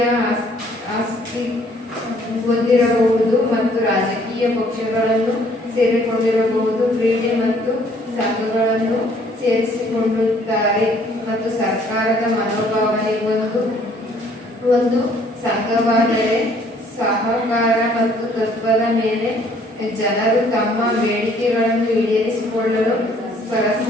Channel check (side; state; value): both; normal; correlation 0.61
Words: ಆಸ್ತಿ ಹೊಂದಿರಬಹುದು ಮತ್ತು ರಾಜಕೀಯ ಪಕ್ಷಗಳನ್ನು ಸೇರಿಕೊಂಡಿರಬಹುದು. ಕ್ರೀಡೆ ಮತ್ತು ಸಂಘಗಳನ್ನು ಸೇರಿಸಿಕೊಳ್ಳುತ್ತಾರೆ ಮತ್ತು ಸರ್ಕಾರದ ಮನೋಭಾವನೆ. ಒಂದು ಸಂಘವಾದರೆ ಸಹಕಾರ ಮತ್ತು ತತ್ವದ ಮೇಲೆ ಜನರು ತಮ್ಮ ಬೇಡಿಕೆಗಳನ್ನು ಈಡೇರಿಸಿಕೊಳ್ಳಲು